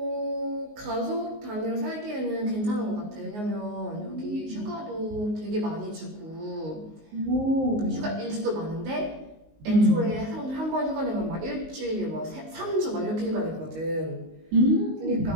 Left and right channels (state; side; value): late; left; 19 ms